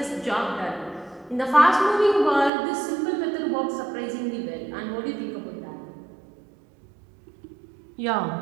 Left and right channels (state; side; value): drops out; left; at 2.5 s